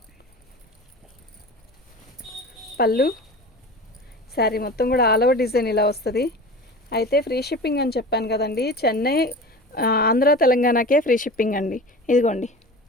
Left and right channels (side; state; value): both; normal; correlation 0.34